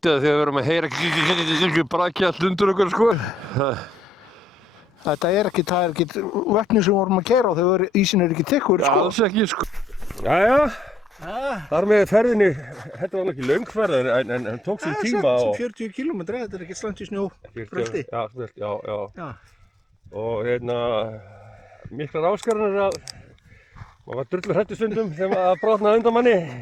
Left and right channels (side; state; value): both; normal; correlation 0.79